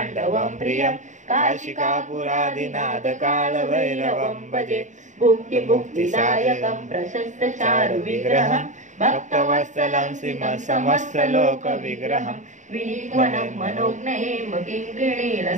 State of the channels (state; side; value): late; left; 0.36 ms